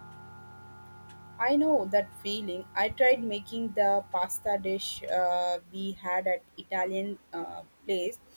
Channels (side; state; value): both; inverted; correlation -1.00